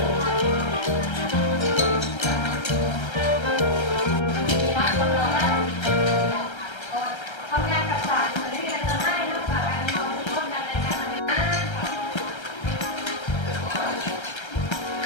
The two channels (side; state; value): right; late; 1.3 ms